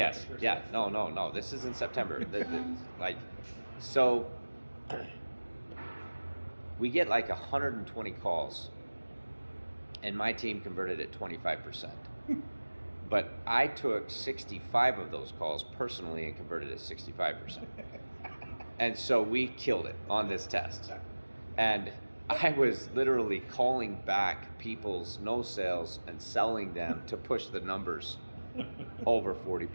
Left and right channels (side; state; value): both; inverted; correlation -1.00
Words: the first yeah, test. no. This is in September. Like, so we get like 120 calls, and my team converted at 25%. But I took 65 of those calls personally and converted at 65%. And so we killed it on this test. And I was literally calling back people's no sales and selling them to push the numbers over